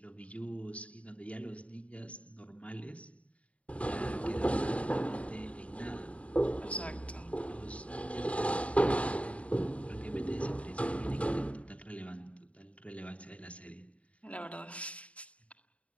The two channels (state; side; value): late; right; 0.064 ms